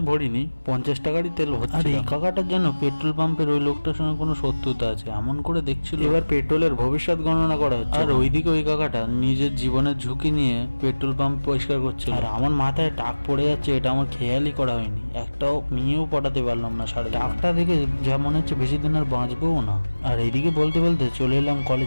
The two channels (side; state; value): both; inverted; correlation -1.00